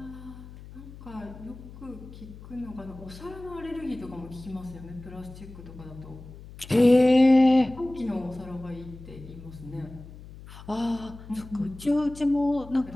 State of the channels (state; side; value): noise; left; hum, 16 dB below the sound